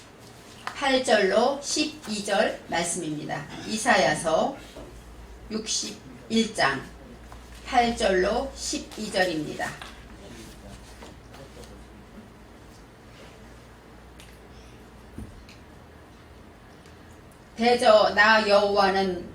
8절로 12절 말씀입니다. 이사야서 61장 8절로 12절입니다. 대저 나 여호와는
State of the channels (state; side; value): identical; both; correlation 1.00